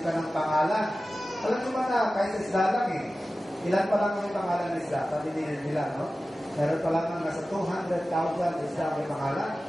ka ng pangalan. Alam mo ba na, kahit sa isda lang ilan pa lang may pangalan ng isda? Sabi nila, no? Meron pa lang nasa 200,000 isda may pangalan.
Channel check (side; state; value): both; normal; correlation 0.95